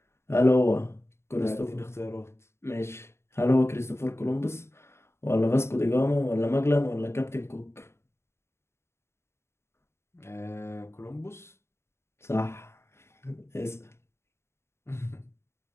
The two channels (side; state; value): right; late; 0.13 ms